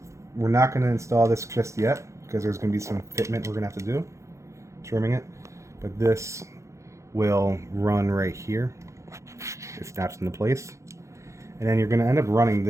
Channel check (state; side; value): late; left; 0.14 ms